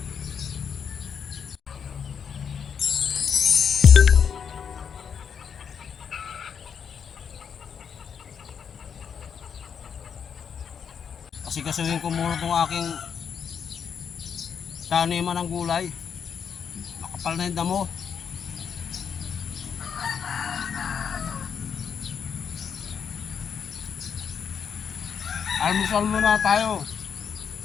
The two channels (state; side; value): quieter; right; 7.2 dB